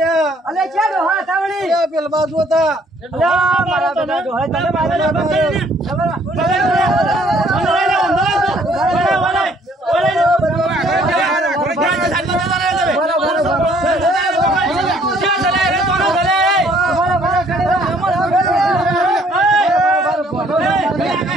અલે ક્યાં ડોહા થાવણી પેલ બાજુ હતા મારા બધા ડોહા તને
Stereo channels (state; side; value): normal; both; correlation 0.62